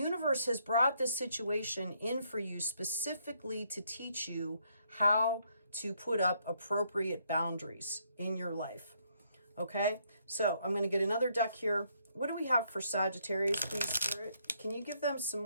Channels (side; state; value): both; inverted; correlation -0.72